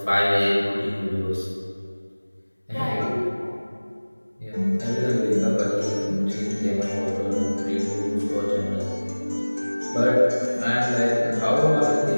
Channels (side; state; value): both; inverted; correlation -1.00